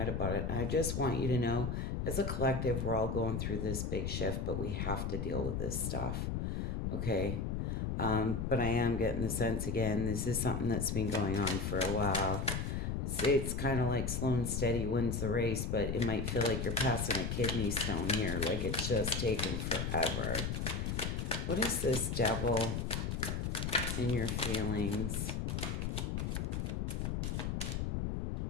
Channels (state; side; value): noise; left; rumble, 1 dB below the sound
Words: about it. And I just want you to know, as a collective, we're all going through this big shift, but we have to deal with this stuff. Okay? But I am getting the sense, again, this is something that's been going on for a while. It's kind of like slow and steady wins the race, but it might feel like you're passing a kidney stone here, like it's just taken forever. What is this, Devil, in your feelings?